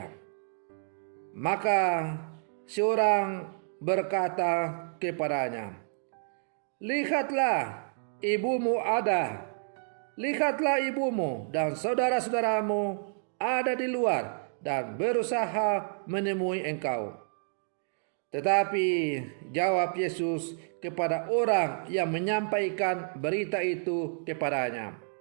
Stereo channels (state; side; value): silent; left; digital silence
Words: Maka seorang berkata kepadanya, "Lihatlah, ibumu ada. Lihatlah ibumu dan saudara-saudaramu ada di luar dan berusaha menemui engkau." Tetapi jawab Yesus kepada orang yang menyampaikan berita itu kepadanya,